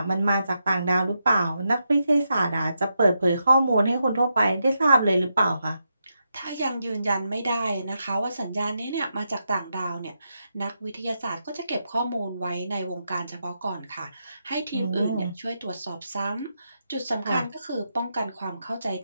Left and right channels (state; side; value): inverted; both; correlation -0.84